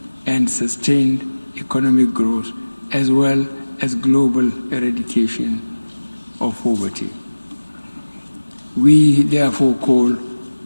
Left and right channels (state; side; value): inverted; both; correlation -1.00